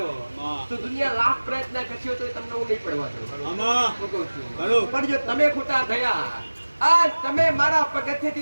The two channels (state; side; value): inverted; both; correlation -1.00